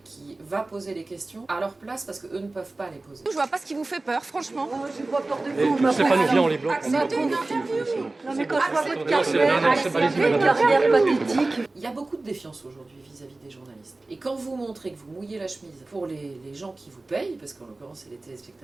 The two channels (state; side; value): quieter; left; 3.1 dB